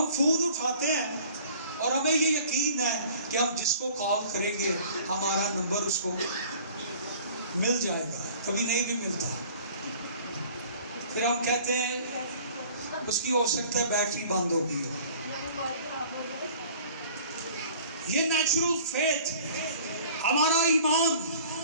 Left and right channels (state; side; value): inverted; both; correlation -0.50